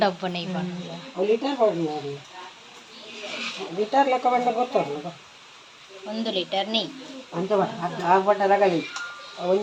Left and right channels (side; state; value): both; identical; correlation 1.00